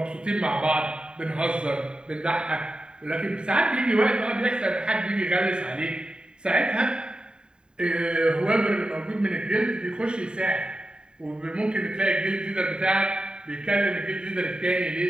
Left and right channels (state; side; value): late; left; 0.049 ms